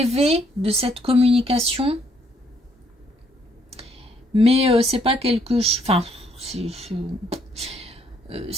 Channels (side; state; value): both; normal; correlation 0.69